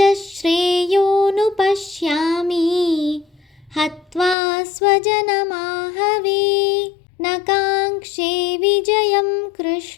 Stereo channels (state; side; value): drops out; right; at 4.4 s